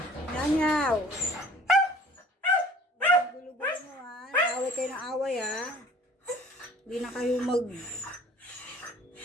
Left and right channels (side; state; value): both; normal; correlation 0.50